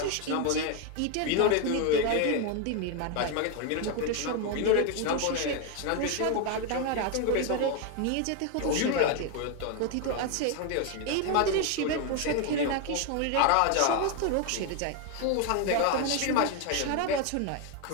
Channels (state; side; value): different; both; correlation 0.01